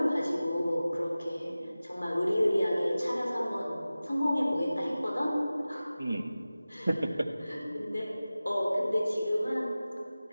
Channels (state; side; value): inverted; both; correlation -0.96